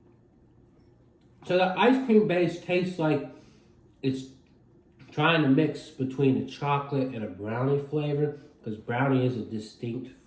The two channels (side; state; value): both; identical; correlation 1.00